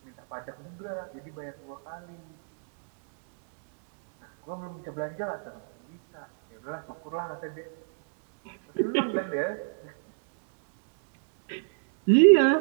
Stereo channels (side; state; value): left; silent; digital silence